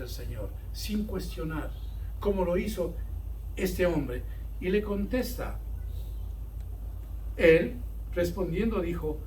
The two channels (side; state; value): both; identical; correlation 1.00